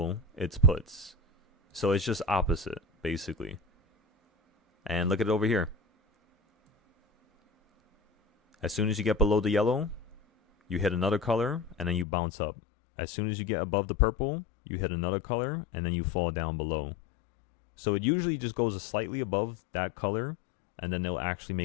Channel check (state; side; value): drops out; right; at 12.1 s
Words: it's puts. So it's just opposite, basically. And look at it over here. As soon as you get below the yellow, you hit another color, and then you bounce up. As soon as you get above the purple, you hit another color, and then you fall down below. So it usually just goes slightly above that color, and then they'll actually